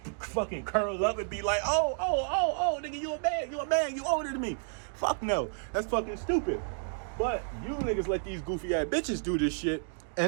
fucking curl up and be like, oh, nigga, you a man, you older than me. Fuck no. That's fucking stupid. But you niggas let these goofy ass bitches do this shit,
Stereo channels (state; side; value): silent; left; 57 dB below the other